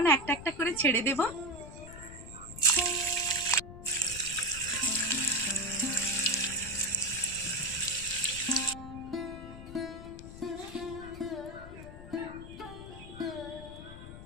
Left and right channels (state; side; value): noise; left; rumble, 13 dB below the sound